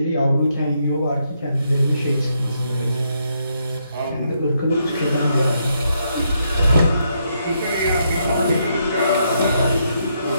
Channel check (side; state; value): both; inverted; correlation -0.77